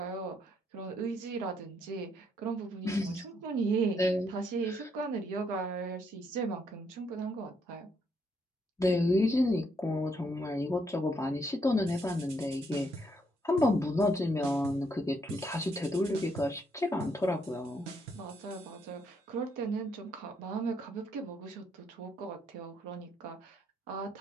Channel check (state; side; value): normal; both; correlation 0.74